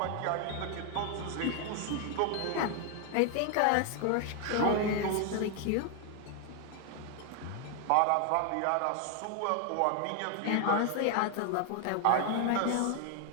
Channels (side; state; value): both; different; correlation 0.00